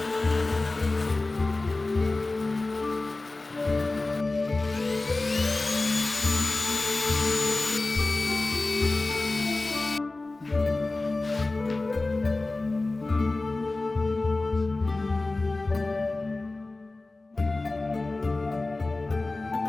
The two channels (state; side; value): quieter; right; 3.2 dB